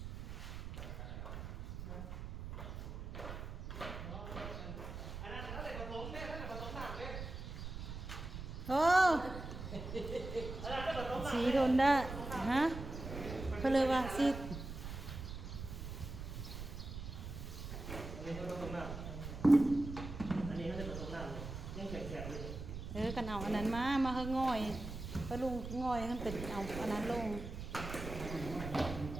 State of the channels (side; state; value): right; noise; rumble, 8 dB below the sound